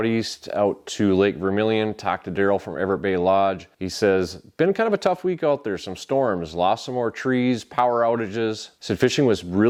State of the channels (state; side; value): identical; both; correlation 1.00